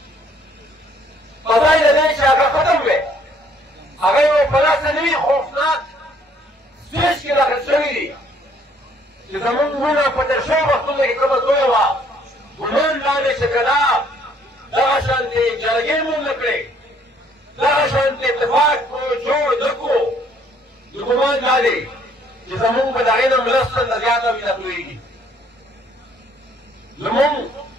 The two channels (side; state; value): both; normal; correlation 0.63